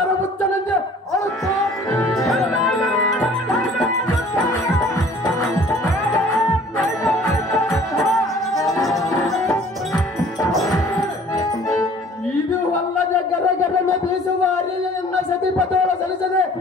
ಮುಚ್ಚನಂತೆ ಅಳುತ್ತಾ ಇದು ಅಲ್ಲದೆ ಗರಗರನ ಬೀಸುವ ಅರಿಯನ್ನ ಸತಿಪತೋಳ ಸಲ್ಲಿಸದೆ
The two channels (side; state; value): both; normal; correlation 0.52